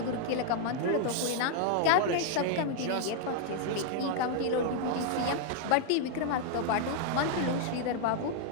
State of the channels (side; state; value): both; different; correlation 0.00